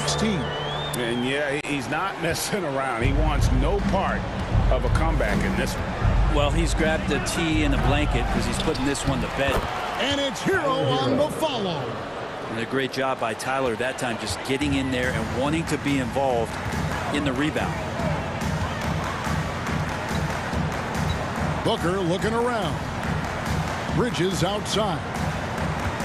And yeah, he's not messing around. He wants no part of a comeback in this one. Well, he's grabbed a tee and a blanket because he's putting this one to bed. And it's Hero on the follow. And a great job by Tyler that time, just getting in there and wanting to be involved in the rebound. Booker looking around. Bridges outside.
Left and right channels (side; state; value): both; identical; correlation 1.00